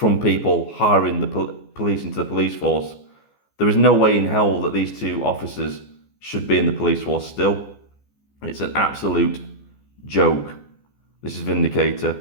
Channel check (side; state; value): right; late; 14 ms